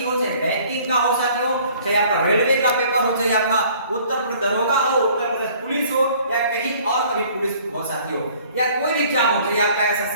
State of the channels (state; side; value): inverted; both; correlation -0.55